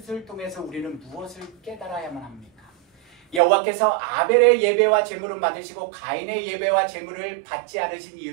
통해서 우리는 무엇을 깨달아야만 합니까? 여호와께서 아벨의 예배와 제물을 받으시고 가인의 예배와 제물을 받지 않으신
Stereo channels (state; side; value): drops out; left; at 3.4 s